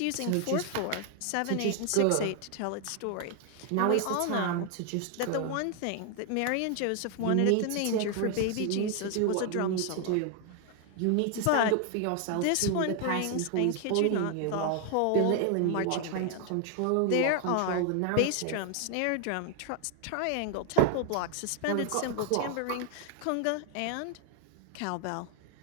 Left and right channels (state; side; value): different; both; correlation 0.00